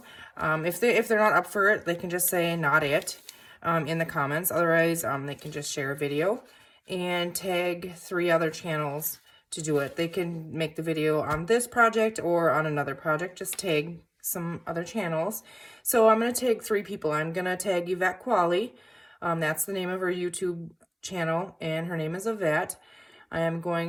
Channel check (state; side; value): identical; both; correlation 1.00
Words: if they're not up for it, they can just say not it in the comments. Otherwise they can just share a video and tag 3 other channels to do it. They can make the video on this project or on another project. Just tag some other channels. So I'm going to tag 3 people. I'm going to tag Yvette Qualley. That's the name of her YouTube channel, and her name is Yvette. I am